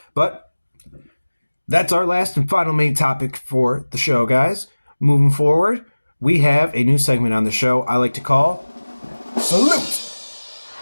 but that's our last and final main topic for the show, guys. Moving forward, we have a new segment on the show I like to call Salute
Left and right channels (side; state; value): both; inverted; correlation -1.00